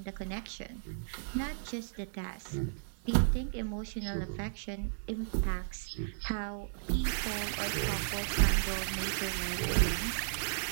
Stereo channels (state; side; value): silent; left; 55 dB below the other